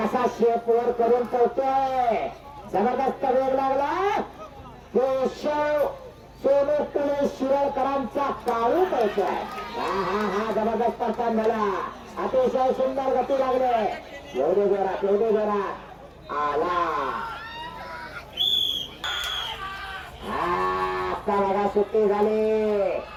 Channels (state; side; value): identical; both; correlation 1.00